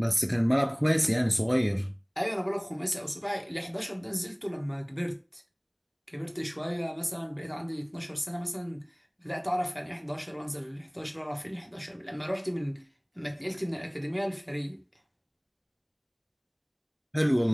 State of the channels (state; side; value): identical; both; correlation 1.00